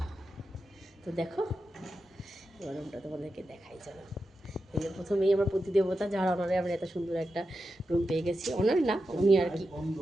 তো দেখো এবার রুমটা তোমাদেরকে দেখাই। চলো, এই যে প্রথমেই আমার প্রতিদেবতা, যার অনারে আমরা এত সুন্দর একটা রুম পেয়ে গেছি। অনার না, উনি আর কি।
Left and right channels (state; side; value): normal; both; correlation 0.89